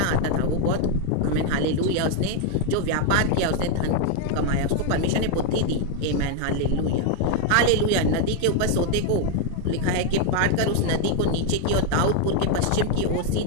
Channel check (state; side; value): different; both; correlation 0.01